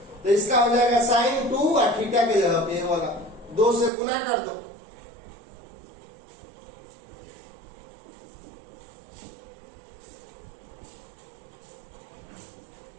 तो इसका हो जाएगा sin 2 और थीटा के जगह पे होगा 2 से गुना कर दो,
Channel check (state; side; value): drops out; left; at 3.9 s